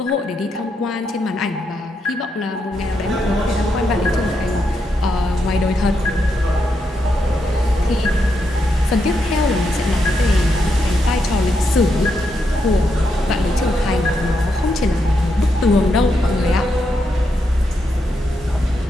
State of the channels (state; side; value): normal; both; correlation 0.82